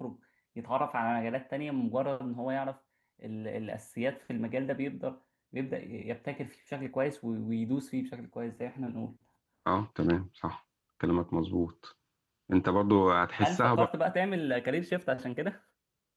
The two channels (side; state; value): both; identical; correlation 1.00